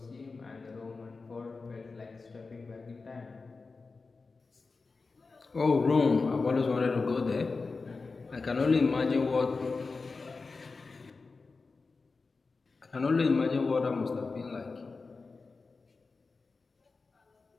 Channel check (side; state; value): right; quieter; 4.2 dB